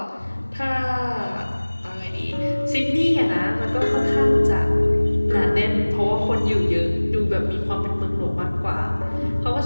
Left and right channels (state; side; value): inverted; both; correlation -1.00